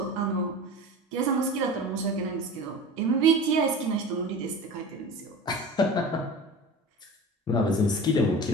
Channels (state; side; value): normal; both; correlation 0.34